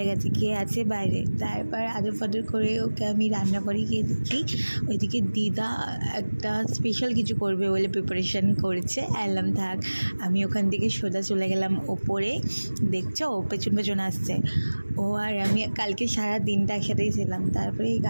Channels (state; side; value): inverted; both; correlation -1.00